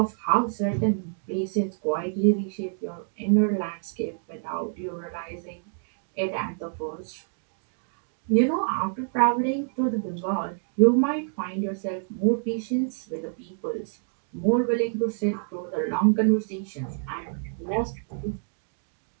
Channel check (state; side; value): silent; left; 60 dB below the other